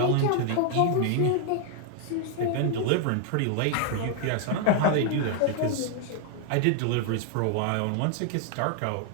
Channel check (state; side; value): different; both; correlation 0.00